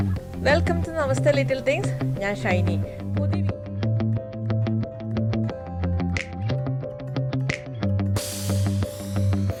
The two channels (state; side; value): identical; both; correlation 1.00